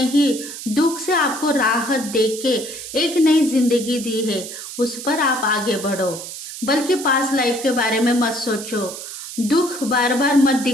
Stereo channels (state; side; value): noise; right; hiss, 10 dB below the sound